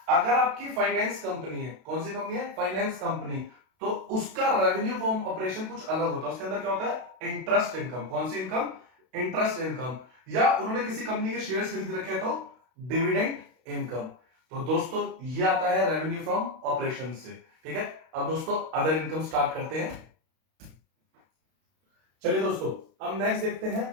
अगर आपकी फाइनेंस कंपनी है, कौन सी कंपनी है? फाइनेंस कंपनी, तो उसका रेवेन्यू फ्रॉम ऑपरेशन कुछ अलग होता है। उसके अंदर क्या होता है? Interest income. कौन सी इनकम? Interest income. या उन्होंने किसी कंपनी के शेयर्स खरीद रखे हैं तो डिविडेंड इनकम। तो दोस्तों, ये आता है रेवेन्यू फ्रॉम ऑपरेशन से, ठीक है। अब दोस्तों, अदर इनकम स्टार्ट करते हैं। चलिए दोस्तों, अब नेक्स्ट देखते हैं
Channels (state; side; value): late; left; 32 ms